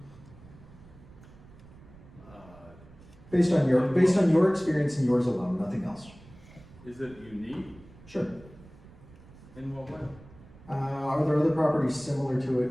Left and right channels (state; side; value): noise; right; rumble, 21 dB below the sound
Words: Based on your experience and yours alone, nothing else. Is it unique? Sure. In what way? Are there other properties similar to